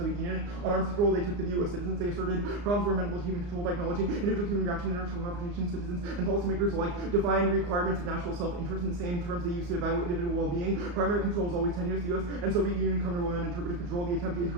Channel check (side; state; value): left; late; 34 ms